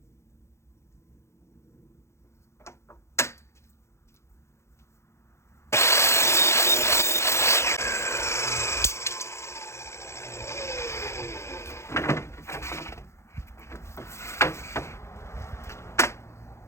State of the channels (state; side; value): late; right; 0.13 ms